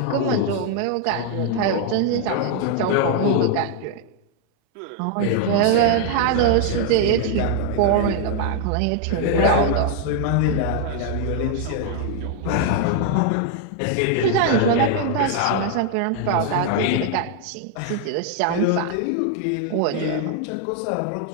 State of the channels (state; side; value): different; both; correlation 0.00